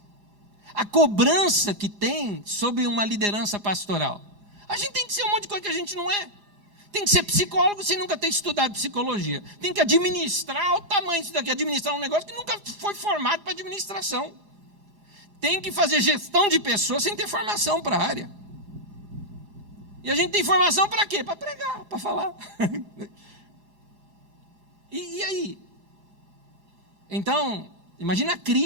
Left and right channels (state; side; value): late; left; 4.9 ms